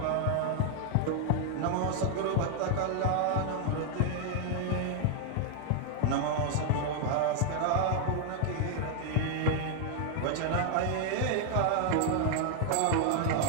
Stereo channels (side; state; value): both; different; correlation 0.00